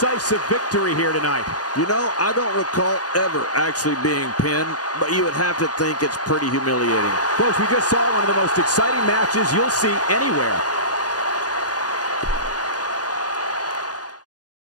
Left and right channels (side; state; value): right; late; 0.68 ms